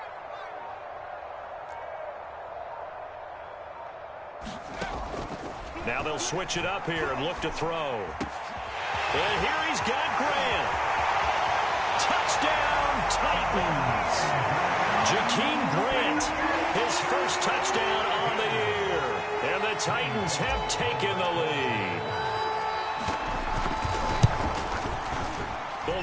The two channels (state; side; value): identical; both; correlation 1.00